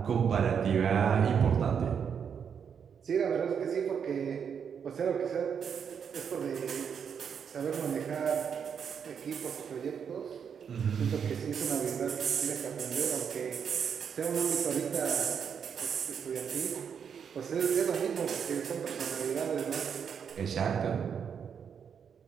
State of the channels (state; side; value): quieter; left; 7.2 dB